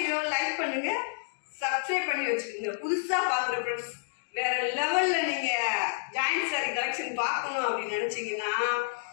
லைக் பண்ணுங்க, சப்ஸ்கிரைப் பண்ணி வச்சுக்கோங்க. புதுசா பாக்குற ஃப்ரெண்ட்ஸ் வேற லெவல்ல நீங்க ஜாயிண்ட் சாரி கலெக்ஷன் பார்க்கணும் அப்படின்னு நினைச்சீங்கன்னா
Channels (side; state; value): right; silent; digital silence